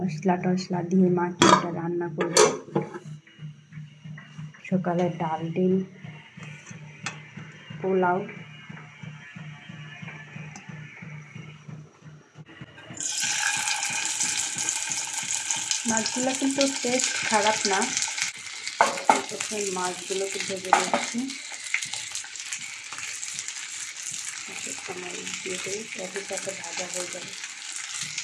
টশলা দিয়ে মাখিয়ে এটা রান্না করব। সকালে ডাল ডিম পোলাও। মাছগুলো কিন্তু টেস্ট খারাপ না। প্রথমে মাছগুলোকে ভেজে নিচ্ছি, দিয়ে দিই, সাথে সাথে ভাজা হয়ে যাবে।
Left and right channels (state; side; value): identical; both; correlation 1.00